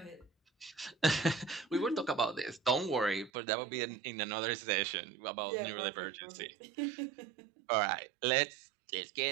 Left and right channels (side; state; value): left; drops out; at 3.3 s